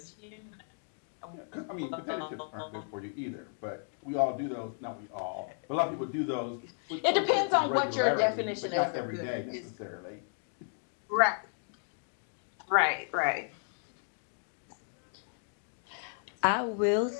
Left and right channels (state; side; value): silent; right; 55 dB below the other